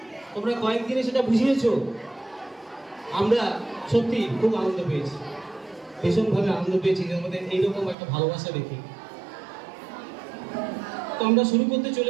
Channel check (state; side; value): drops out; left; at 8.0 s